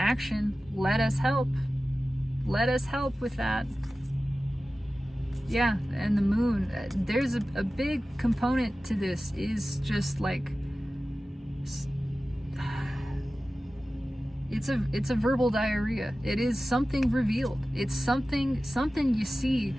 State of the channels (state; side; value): normal; both; correlation 0.95